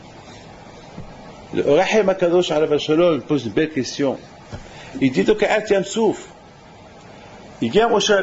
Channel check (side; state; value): both; identical; correlation 1.00